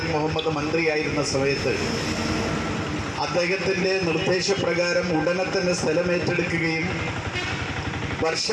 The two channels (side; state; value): both; identical; correlation 1.00